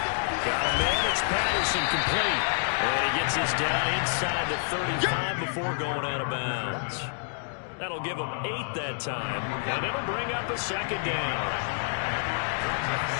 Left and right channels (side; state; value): right; silent; digital silence